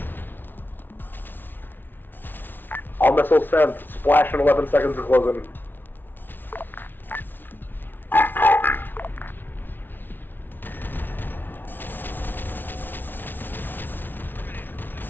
All missiles sent. Splash in 11 seconds and closing.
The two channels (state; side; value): late; right; 0.095 ms